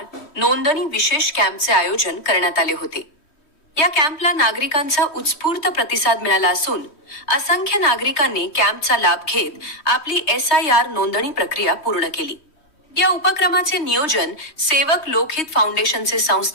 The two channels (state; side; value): late; right; 3.1 ms